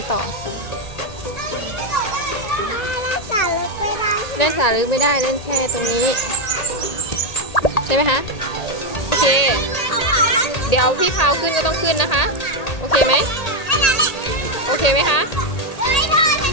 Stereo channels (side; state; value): right; late; 1.8 ms